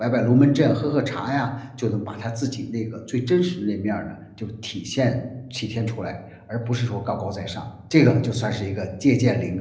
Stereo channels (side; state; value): both; identical; correlation 1.00